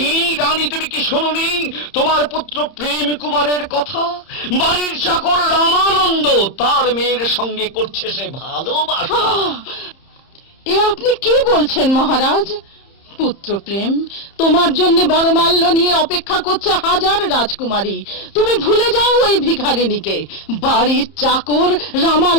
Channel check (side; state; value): right; late; 30 ms